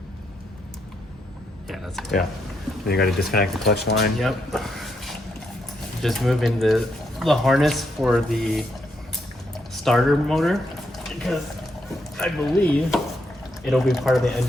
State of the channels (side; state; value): both; normal; correlation 0.79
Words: Yeah, that's air. Yeah. Then you got to disconnect the clutch line. Yep. Just moving the harness for the starter motor, because I believe it'll be part of the